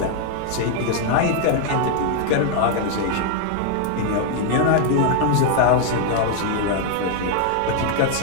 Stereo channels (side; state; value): both; different; correlation 0.00